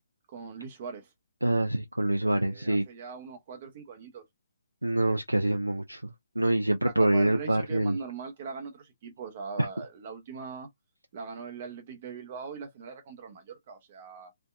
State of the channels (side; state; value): both; inverted; correlation -0.96